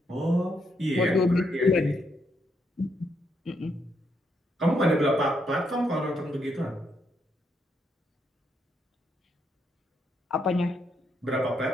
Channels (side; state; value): both; normal; correlation 0.77